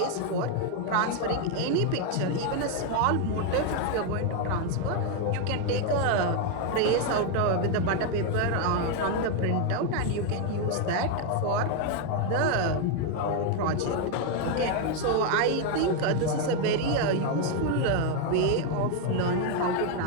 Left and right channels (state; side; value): different; both; correlation 0.01